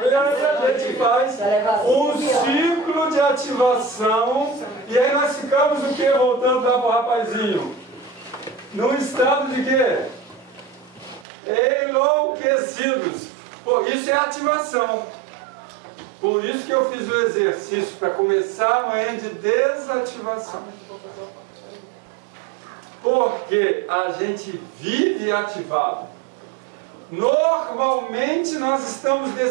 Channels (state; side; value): drops out; left; at 11.2 s